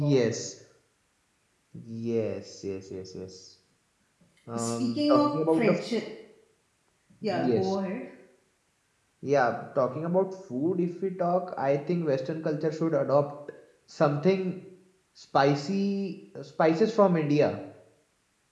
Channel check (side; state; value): both; identical; correlation 1.00